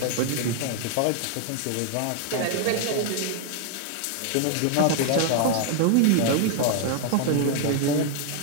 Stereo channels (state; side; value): different; both; correlation 0.00